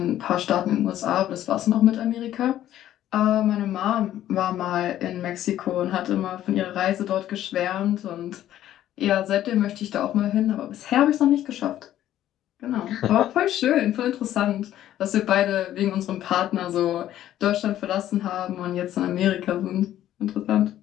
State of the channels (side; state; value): right; quieter; 12.4 dB